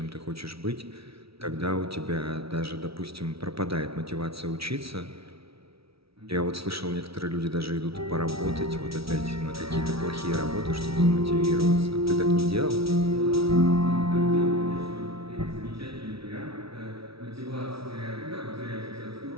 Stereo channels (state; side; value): late; left; 0.76 ms